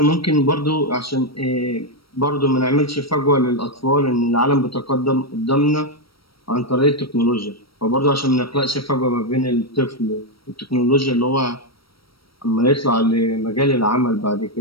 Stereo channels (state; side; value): late; right; 0.75 ms